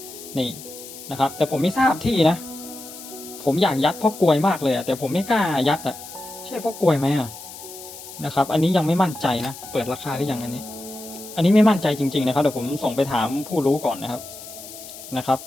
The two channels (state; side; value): noise; left; hiss, 14 dB below the sound